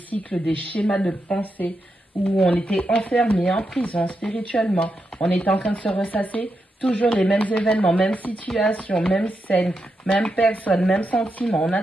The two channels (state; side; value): normal; both; correlation 0.85